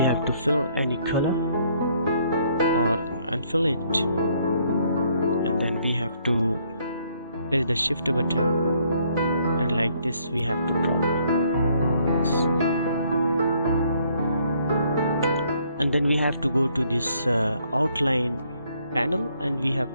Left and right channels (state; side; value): inverted; both; correlation -0.67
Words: have to fill any color or unfill it, and then we have to press the shift button like this we have to draw. And then we have to go to this outline panel, and we